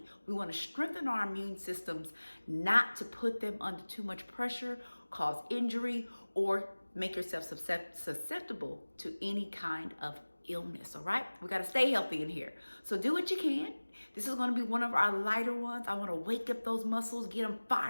We want to strengthen our immune systems, not to put them under too much pressure, cause injury, or make yourself susceptible to any kind of illness. All right, we got to stay healthy in here, so do what you can. This is going to be one of our lighter ones. I want to wake up those muscles, get them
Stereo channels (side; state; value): both; inverted; correlation -1.00